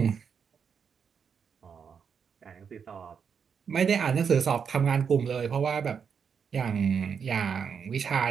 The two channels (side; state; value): left; quieter; 6.7 dB